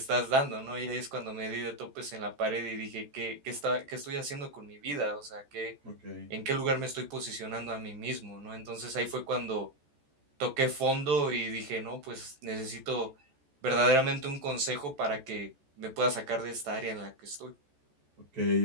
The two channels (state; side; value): late; left; 14 ms